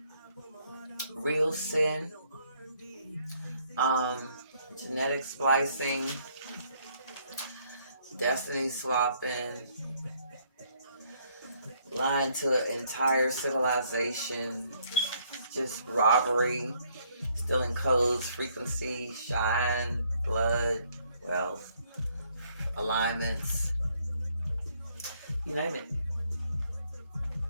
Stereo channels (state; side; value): inverted; both; correlation -0.68